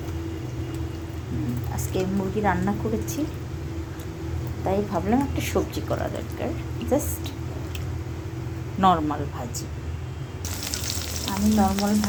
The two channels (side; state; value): both; identical; correlation 1.00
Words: আজকে মুরগি রান্না করেছি, তাই ভাবলাম একটা সবজি করা দরকার। জাস্ট নর্মাল ভাজি। আমি নর্মাল